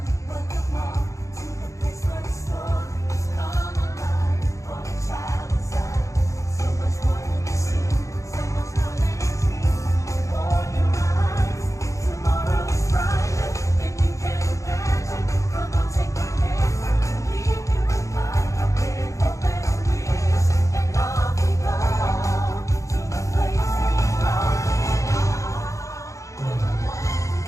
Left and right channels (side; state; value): right; late; 0.15 ms